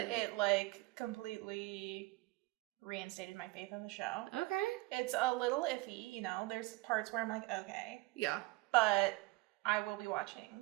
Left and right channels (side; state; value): left; quieter; 21.6 dB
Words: It like completely reinstated my faith in the show. Okay. It's a little iffy, there's parts where I'm like, okay. Yeah. But I will be watching